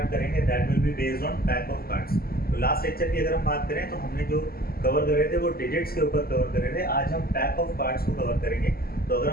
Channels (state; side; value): late; right; 0.44 ms